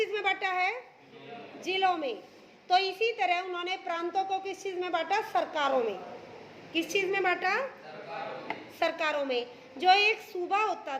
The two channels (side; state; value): both; identical; correlation 1.00